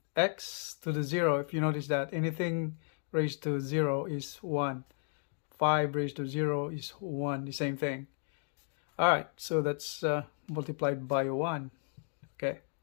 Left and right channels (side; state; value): right; silent; 55 dB below the other